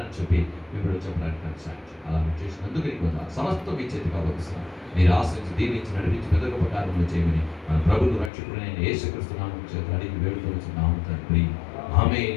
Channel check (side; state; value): right; drops out; at 8.3 s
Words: చెప్పి మీ బిడ్డలు చెప్పడానికి నాకు సాయం. అలా మీరు చేసినందుకు నీకు సమస్తం మీ చేతికి అప్పగిస్తున్నాను. మీరు ఆశించి దీవించి నడిపించి పెద్ద గొప్ప కార్యములు చేయమని మన ప్రభువు రక్షకుడైన యేసుక్రీస్తు నామమున చేతులు అడిగి వేడుకొనుచున్నాము తండ్రి.